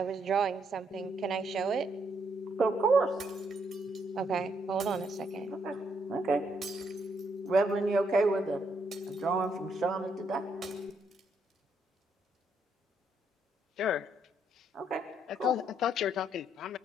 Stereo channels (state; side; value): normal; both; correlation 0.74